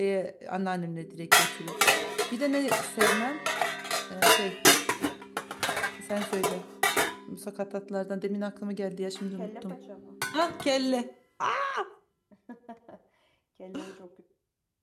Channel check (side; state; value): both; identical; correlation 1.00